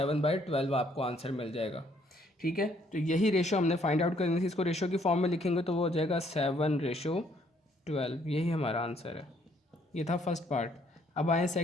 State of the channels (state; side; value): normal; both; correlation 0.66